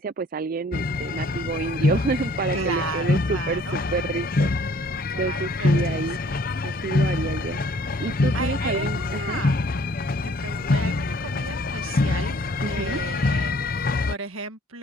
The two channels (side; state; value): both; normal; correlation 0.58